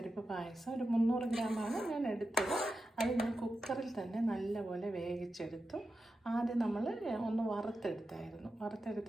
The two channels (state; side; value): normal; both; correlation 0.90